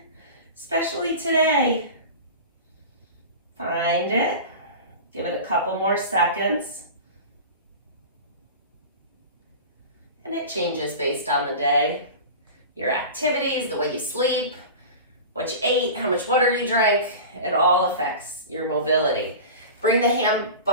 especially today. Find it, give it a couple more seconds. And it changes based on the day, your activities, the way you sleep, what you ate, how much water you drank. It all affects your mobility. Bring the hand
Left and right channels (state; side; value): inverted; both; correlation -0.33